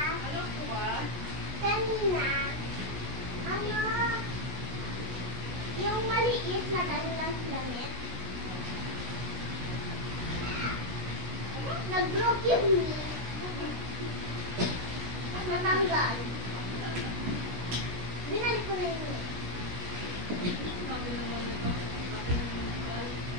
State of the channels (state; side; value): late; left; 16 ms